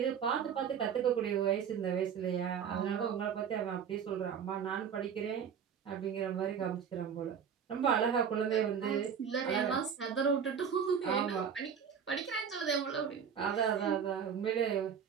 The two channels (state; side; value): quieter; left; 7.5 dB